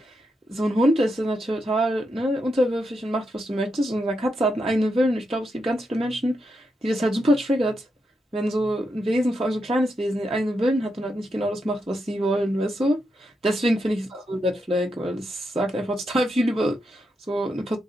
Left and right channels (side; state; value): both; normal; correlation 0.84